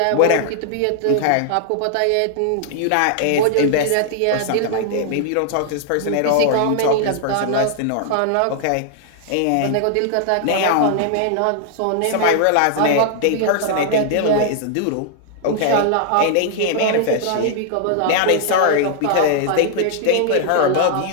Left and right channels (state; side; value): different; both; correlation -0.01